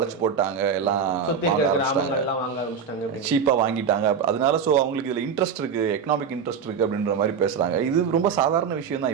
போட்டாங்க, எல்லாம் சீப்பா வாங்கிட்டாங்க. அதனால சோ அவங்களுக்கு இதுல இன்ட்ரெஸ்ட் இருக்கு, எக்கனாமிக் இன்ட்ரெஸ்ட் இருக்கு அப்படின்ற மாதிரி பேசுறாங்க. இது ரொம்ப சாதாரண விஷயம்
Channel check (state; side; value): quieter; left; 6.5 dB